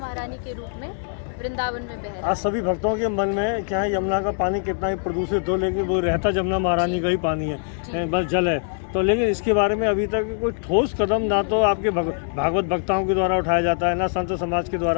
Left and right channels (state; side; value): silent; right; 63 dB below the other